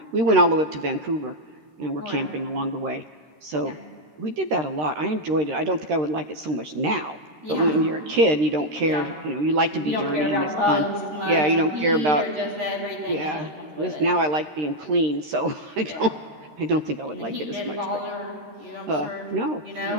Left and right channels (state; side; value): late; left; 13 ms